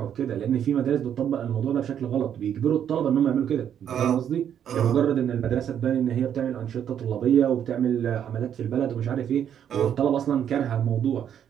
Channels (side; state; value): left; quieter; 9.2 dB